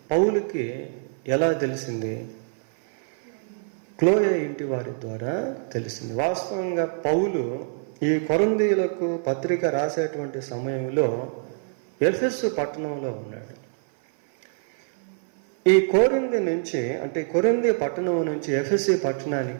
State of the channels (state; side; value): silent; left; 57 dB below the other